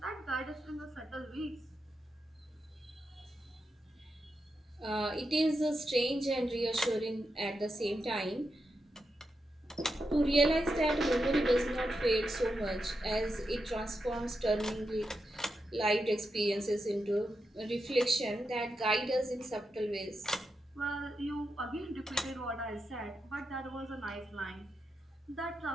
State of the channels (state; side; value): normal; both; correlation 0.87